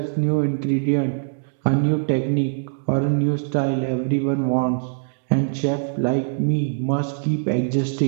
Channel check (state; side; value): silent; left; digital silence